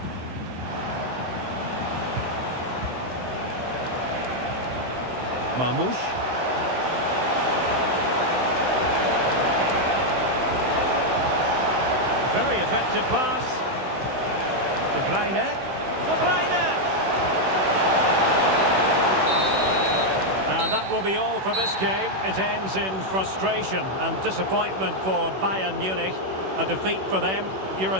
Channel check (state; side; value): late; left; 16 ms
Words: Mamouche. Very effective pass. De Bruyne. De Bruyne! And that will be all for this game. It ends in frustration and disappointment for Bayern Munich. A defeat for them. Your